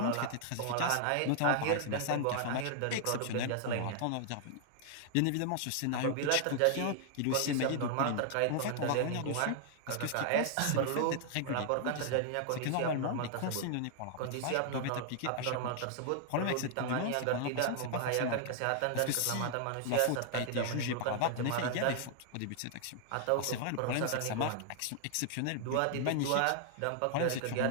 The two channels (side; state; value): both; different; correlation 0.00